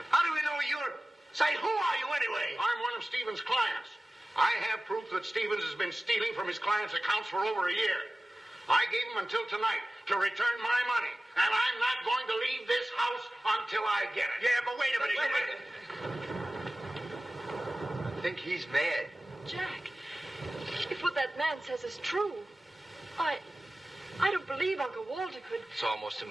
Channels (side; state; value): both; normal; correlation 0.97